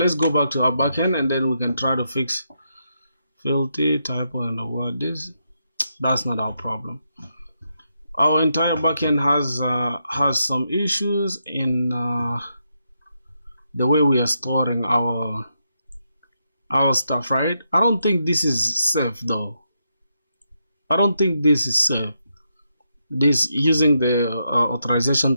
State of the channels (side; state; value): both; inverted; correlation -0.82